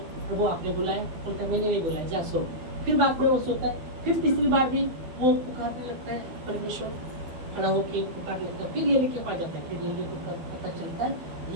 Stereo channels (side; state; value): left; late; 12 ms